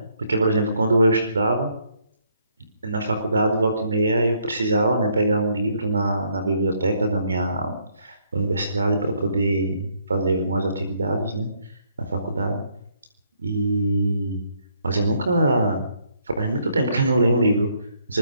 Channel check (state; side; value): inverted; both; correlation -0.70